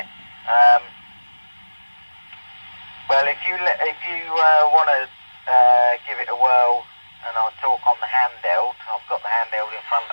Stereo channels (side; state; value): both; inverted; correlation -1.00